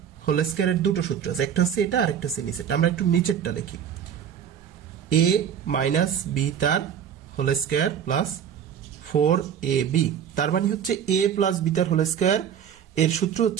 হোল স্কয়ারের দুটো সূত্র আছে, একটা হচ্ছে এটা আর একটা হচ্ছে নিচেরটা। আমরা একটু নিচেরটা লিখি a মাইনাস b তার হোল স্কয়ার প্লাস 4ab, তার মানে হচ্ছে a প্লাস b তার হোল স্কয়ার এর সূত্র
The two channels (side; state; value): left; quieter; 8.6 dB